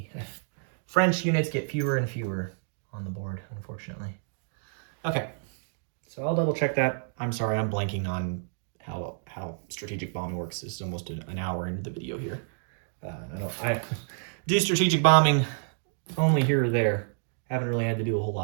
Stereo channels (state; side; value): silent; left; digital silence